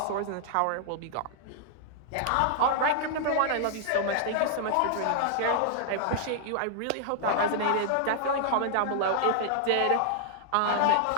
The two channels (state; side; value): different; both; correlation -0.01